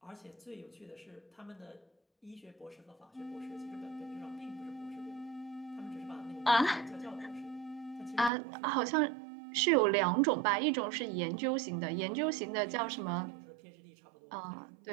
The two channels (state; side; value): drops out; left; at 8.3 s